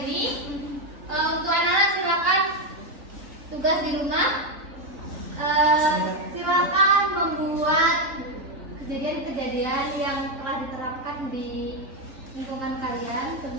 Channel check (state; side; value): late; left; 3.9 ms